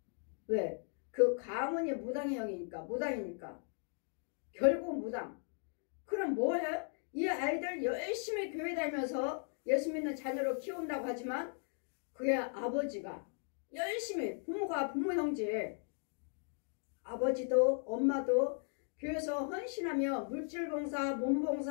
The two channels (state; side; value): silent; right; 53 dB below the other